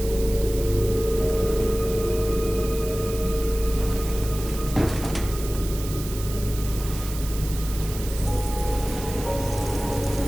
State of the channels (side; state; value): right; noise; hiss, 12 dB below the sound